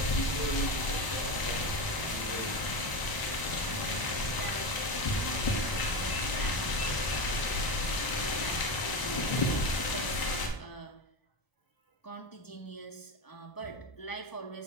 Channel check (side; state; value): right; late; 1.0 ms